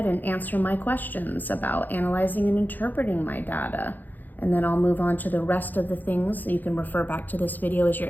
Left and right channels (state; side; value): late; right; 0.086 ms